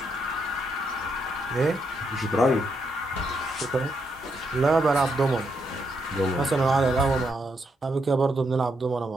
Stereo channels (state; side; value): normal; both; correlation 0.79